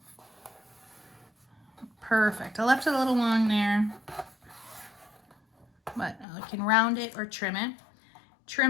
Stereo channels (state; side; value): drops out; right; at 6.2 s